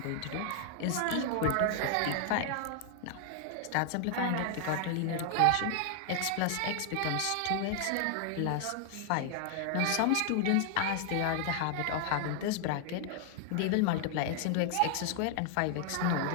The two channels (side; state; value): both; different; correlation 0.00